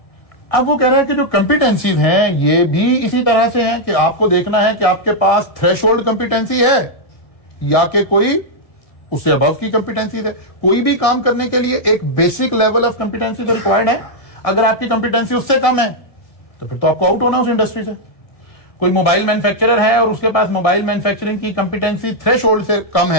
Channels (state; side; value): late; right; 1.7 ms